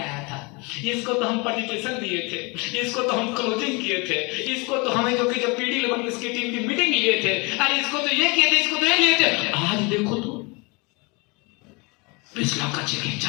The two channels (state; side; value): quieter; right; 28.6 dB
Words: था, इसको तो हम पटिटेशन दिए थे, इसको तो हम क्लोजिंग किए थे, इसको तो हमें जो कि जब पीडी लेवल इसकी टीम की मीटिंग लिए थे, अरे इसको तो ये किए थे, इसको तो ये लिए थे। आज देखो तो 20 लाख का चेक है,